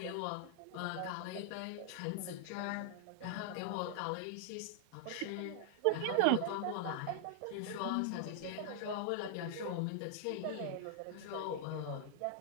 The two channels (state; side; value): different; both; correlation -0.01